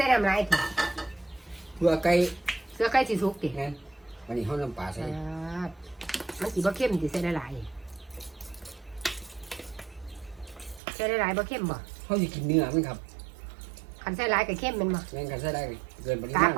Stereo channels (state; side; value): drops out; left; at 10.8 s